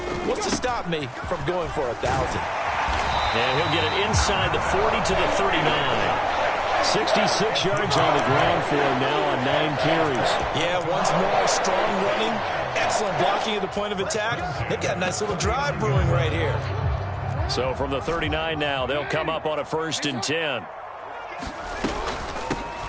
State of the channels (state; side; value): identical; both; correlation 1.00